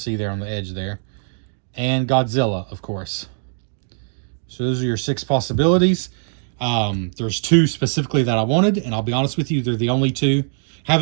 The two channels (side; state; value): left; silent; digital silence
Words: there on the edge there. And Godzilla, of course. So those are your 6 possibilities. There's 2 specifically that I wanted, and I'll be honest with you, they're the only 2.